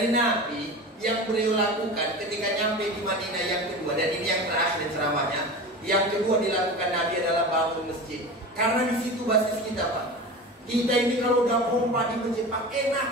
Nabi yang beliau lakukan ketika nyampe di Madinah yang kedua, dan ini yang terakhir ceramahnya, yang kedua dilakukan Nabi adalah bangun masjid. Karena di situ basis kita Pak. Kita ini kalau udah pompa di masjid Pak enak,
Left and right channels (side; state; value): both; normal; correlation 0.31